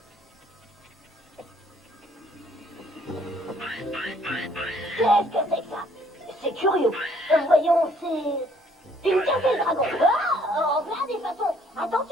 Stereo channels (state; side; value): normal; both; correlation 0.62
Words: Qu'est-ce que c'est que ça? C'est curieux. Voyons, c'est une café dragon. Ah, en plein des façons.